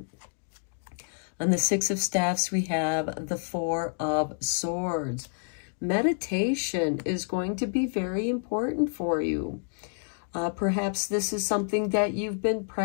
On the 6 of Staffs, we have the 4 of Swords. Meditation is going to be very important for you. Perhaps this is something that you've been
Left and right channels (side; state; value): right; silent; digital silence